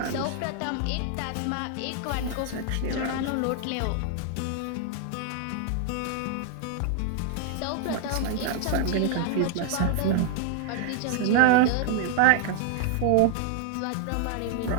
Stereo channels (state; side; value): different; both; correlation 0.00